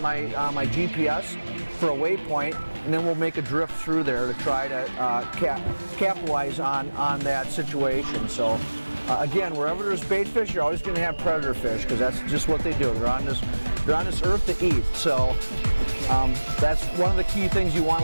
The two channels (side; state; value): both; inverted; correlation -1.00